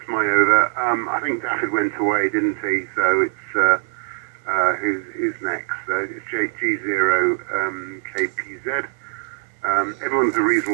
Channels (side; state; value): left; silent; 64 dB below the other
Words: my over. I think Daffyd went away, didn't he? So it's who's next? It's G0 KPZ. Everyone's a